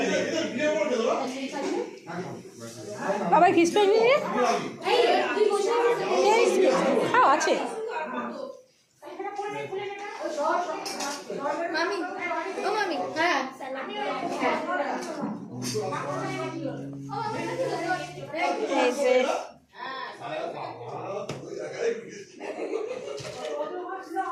বাবাই ফিশ ফ্রাই নিয়ে খাও আছে। মামি ও মামি হ্যাঁ এই যে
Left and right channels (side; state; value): both; identical; correlation 1.00